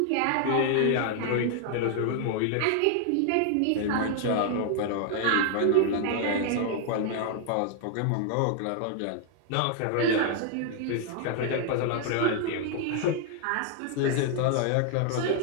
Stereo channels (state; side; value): different; both; correlation 0.00